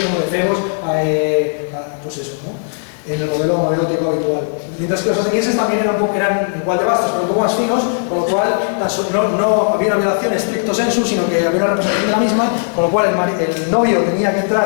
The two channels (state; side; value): silent; right; digital silence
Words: como de femos, pues eso, ¿no? En el modelo erótico habitual. Mientras que los atenienses también eran igual de vastos, pero un poco más finos, con lo cual no había una violación estricto sensu, sino que había una representación de la misma, con lo cual el novio tenía que